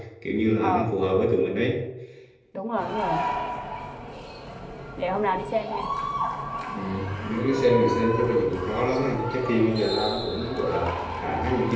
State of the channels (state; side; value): identical; both; correlation 1.00